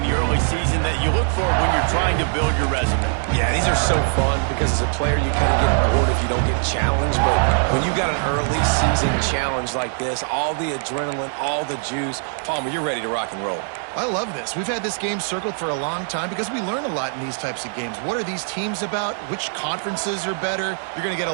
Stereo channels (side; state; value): left; silent; 64 dB below the other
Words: the early season that you look for when you're trying to build your resume. Yeah, these are so fun because as a player you kind of get bored if you don't get challenged. But when you got an early season challenge like this, all the adrenaline, all the juice, Palmer, you're ready to rock and roll. I love this. We've had this game circled for a long time because we learn a lot in these types of games. What are these teams about? Which conferences are better? You're going to get a